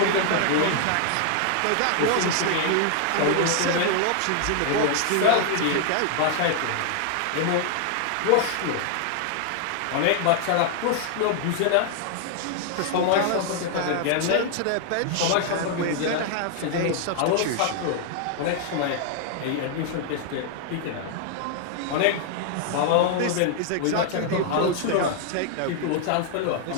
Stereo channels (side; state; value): both; different; correlation 0.00